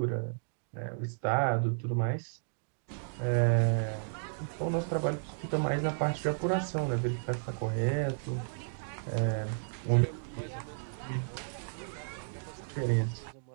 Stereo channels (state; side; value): silent; left; digital silence